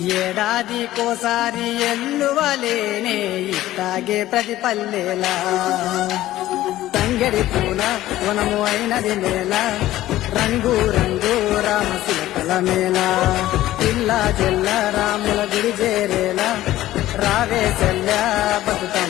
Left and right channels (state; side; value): quieter; right; 14.9 dB